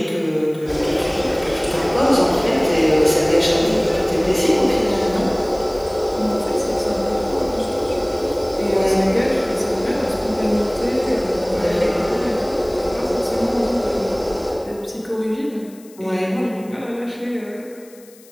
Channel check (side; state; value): left; noise; hiss, 25 dB below the sound